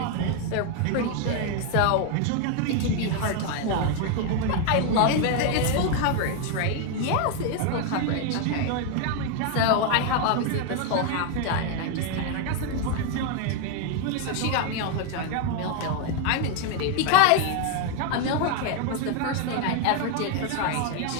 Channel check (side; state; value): both; different; correlation 0.01